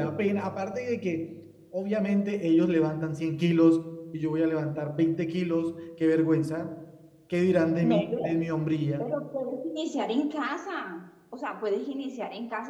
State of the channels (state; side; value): identical; both; correlation 1.00